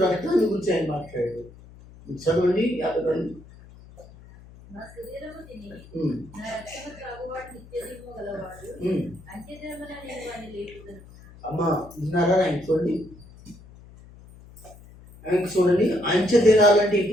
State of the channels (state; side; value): noise; left; hum, 21 dB below the sound